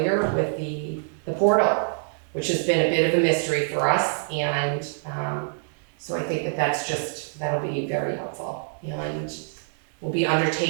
with the portal, which has been a bit of a mystery for us, and so I think that'll be very helpful. And we'll be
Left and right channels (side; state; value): left; silent; 60 dB below the other